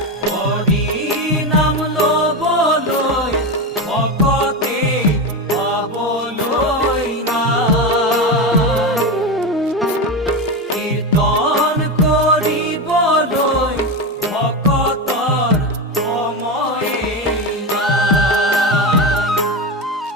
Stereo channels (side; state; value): both; normal; correlation 0.17